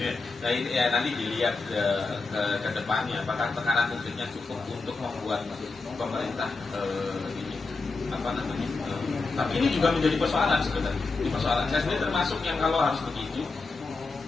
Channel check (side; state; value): right; quieter; 3.9 dB